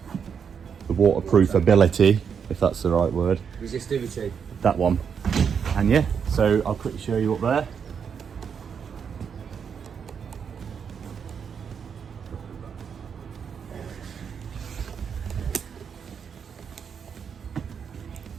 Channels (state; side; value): quieter; left; 6.9 dB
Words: waterproof ability, if that's the right word. Resistivity. That one. And yeah, so I'll quickly show you up there.